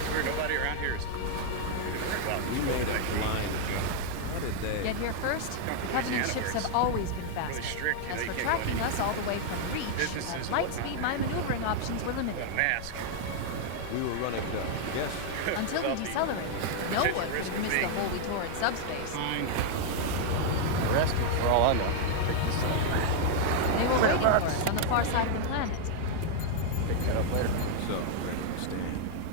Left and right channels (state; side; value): different; both; correlation 0.00